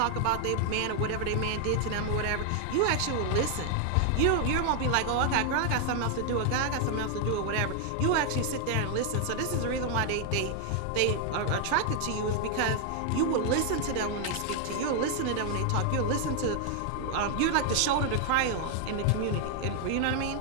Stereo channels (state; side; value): different; both; correlation 0.00